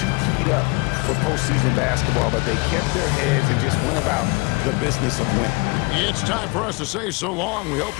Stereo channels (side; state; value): right; quieter; 27.4 dB